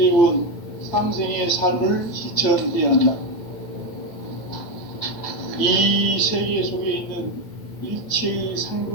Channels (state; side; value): late; right; 9.2 ms